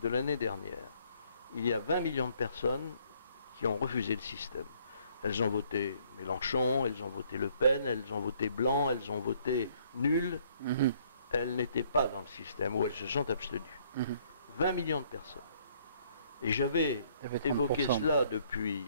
de l'année dernière. Il y a 20 millions de personnes qui ont refusé le système. Elles ont voté Mélenchon, elles ont voté Le Pen, elles ont voté Blanc, elles ont voté nul. Elles n'étaient pas dans le système, ou elles se sont abstenues. 20 millions de personnes. Et j'avais évoqué cela depuis...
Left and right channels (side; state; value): both; inverted; correlation -0.65